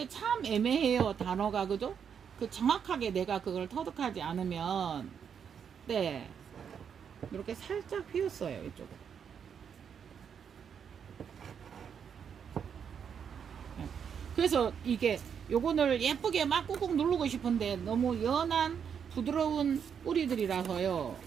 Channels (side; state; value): left; quieter; 7.5 dB